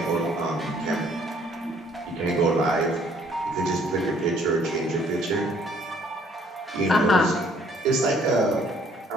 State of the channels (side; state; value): both; normal; correlation 0.62